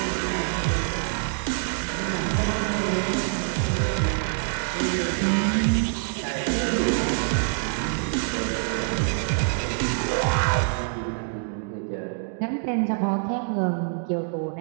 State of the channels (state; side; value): silent; left; digital silence